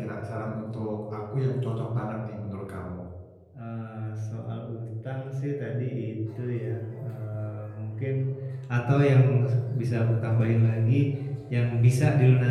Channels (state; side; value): identical; both; correlation 1.00